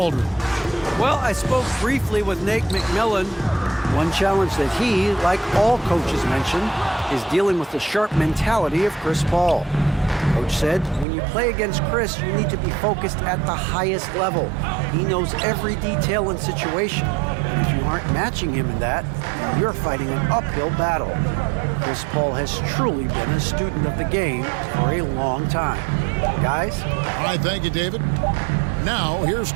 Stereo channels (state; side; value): drops out; left; at 11.1 s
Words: Well, I spoke briefly with Nate McMillan. One challenge that he, like all coaches mentioned, is dealing with the sharp mentality of Chris Paul. Coach said, when you play against Chris, you need to be focused at the highest level. He knows every detail and situation. And if you aren't matching him in that, you're fighting an uphill battle. Chris Paul has truly been a student of the game for a long time. Guys? All right, thank you, David. Now, here's